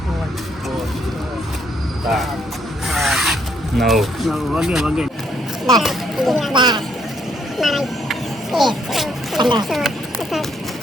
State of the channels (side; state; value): both; normal; correlation 0.70